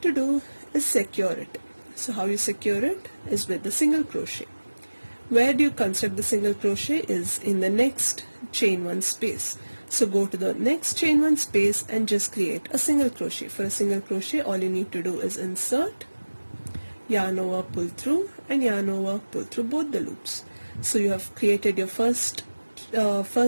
to do is secure it. So how you secure it is with the single crochet. Where do you construct the single crochet is in the next chain 1 space. So go to the next chain 1 space and just create a single crochet. For a single crochet, all you need to do is insert, yarn over, pull through, and yarn over, pull through both the loops. So you have created your first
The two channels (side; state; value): both; inverted; correlation -1.00